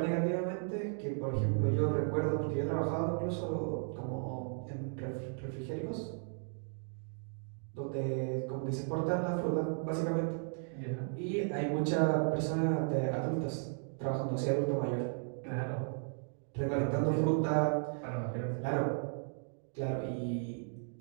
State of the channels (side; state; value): left; silent; 54 dB below the other